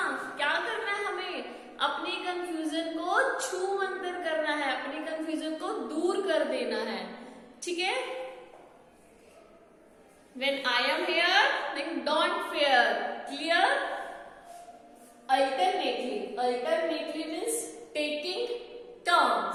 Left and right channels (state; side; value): identical; both; correlation 1.00